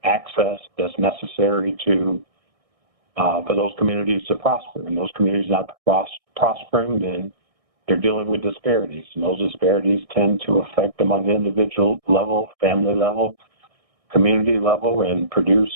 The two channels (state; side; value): late; left; 1.6 ms